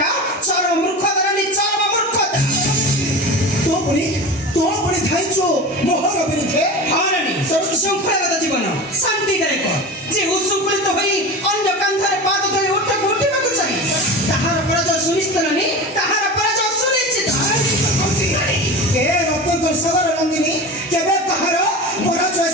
ଚରମ ମୂର୍ଖତାର ଚରମ ମୂର୍ଖତା ତୋ ପୁଣି ଥାଇଛୁ ମୋହର ବିରୁଦ୍ଧେ ହଁ ନାନୀ ଶୃଙ୍ଖଳାଗତ ଜୀବନ ଶାନ୍ତିଦାୟକ ଯେ ଉଶୃଙ୍ଖଳିତ ହୋଇ ଅନ୍ୟ କାନ୍ଧରେ ପାଦ ଧରି ଉଠିବାକୁ ଚାହେଁ ତାହାର ପରାଜୟ ସୁନିଶ୍ଚିତ ନାନୀ ତାହାର ପରାଜୟ ସୁନିଶ୍ଚିତ ଏ ରତ୍ନଙ୍କର ସାଗର ନନ୍ଦିନୀ କେବେ ତାହାର ପରାଜୟ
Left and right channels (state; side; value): normal; both; correlation 0.30